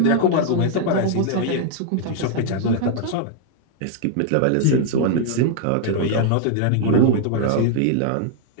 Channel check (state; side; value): different; both; correlation 0.00